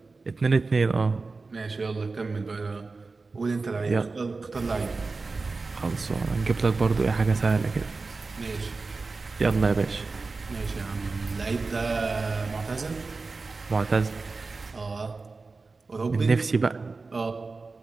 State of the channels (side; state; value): left; quieter; 4.0 dB